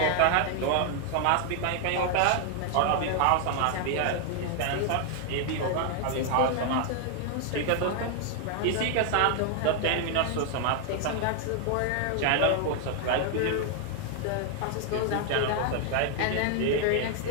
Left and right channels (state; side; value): different; both; correlation 0.00